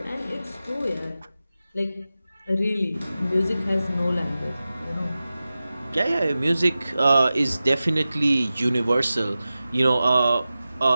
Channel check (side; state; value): both; inverted; correlation -0.94